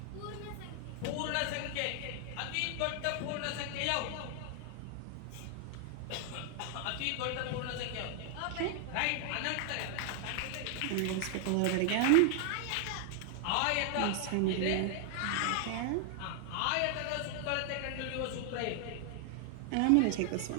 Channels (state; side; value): different; both; correlation 0.00